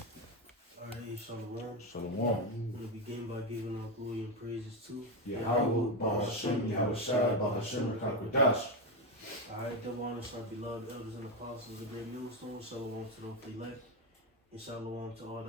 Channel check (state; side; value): normal; both; correlation 0.11